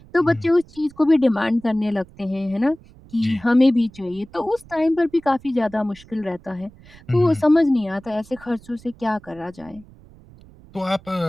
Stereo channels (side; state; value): right; noise; rumble, 23 dB below the sound